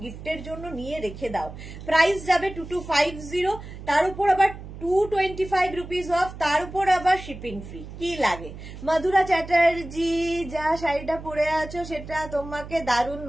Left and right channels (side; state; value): right; noise; hum, 13 dB below the sound